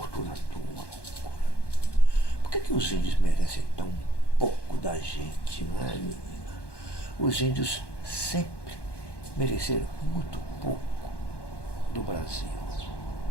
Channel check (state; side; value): late; right; 1.1 ms